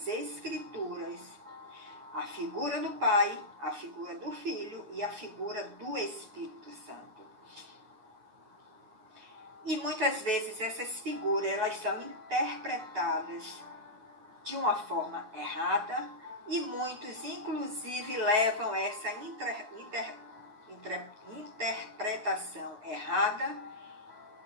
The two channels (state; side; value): late; left; 9.6 ms